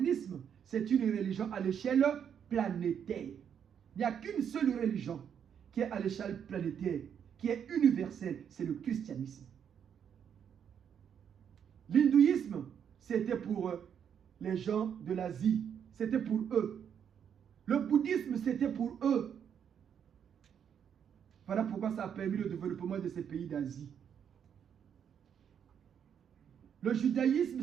c'est une religion à l'échelle planétaire. Il n'y a qu'une seule religion qui est à l'échelle planétaire, qui est universelle, c'est le christianisme. L'hindouisme, c'était pour les gens de l'Asie, c'était pour eux. Le bouddhisme, c'était pour eux. Voilà pourquoi ça a permis le développement de ces pays d'Asie. Le judaïsme,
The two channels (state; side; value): quieter; left; 8.2 dB